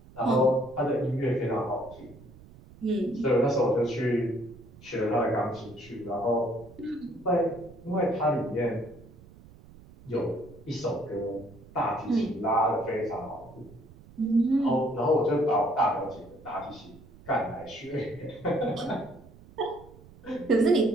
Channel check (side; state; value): right; noise; rumble, 22 dB below the sound